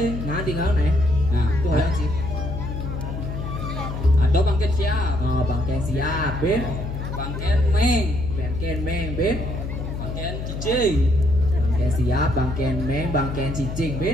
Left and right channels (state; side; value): noise; left; hum, 6 dB below the sound